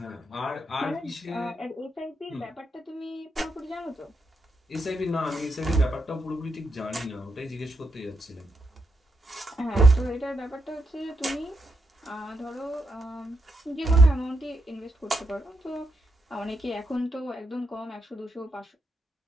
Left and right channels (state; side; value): normal; both; correlation 0.82